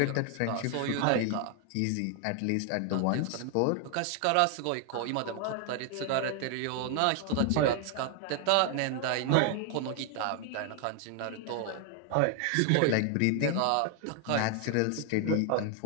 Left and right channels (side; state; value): both; different; correlation 0.00